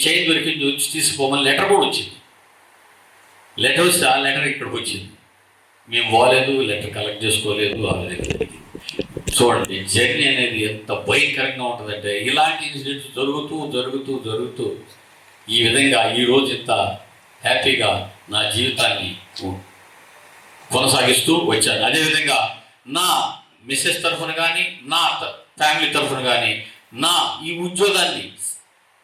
చైన్ దొరికింది వచ్చి తీసుకోమని లెటర్ కూడా వచ్చింది. లెటర్ వస్తే ఆ లెటర్ ఇక్కడికి వచ్చింది. మేము పోలేదు, లెటర్ కలెక్ట్ చేసుకోలేదు. చూడండి జర్నీ అనేది ఎంత భయంకరంగా ఉంటుందంటే, ఇలాంటి ఇన్సిడెంట్స్ జరుగుతూ ఈ విధంగా ఈరోజు ఇంత హ్యాపీగా నా జీవితాన్ని కొనసాగిస్తూ వచ్చాను. అదేవిధంగా నా మిస్సెస్ తరఫున కానీ, నా ఫ్యామిలీ తరఫున కానీ, నా ఈ ఉద్యోగాన్ని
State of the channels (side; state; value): both; identical; correlation 1.00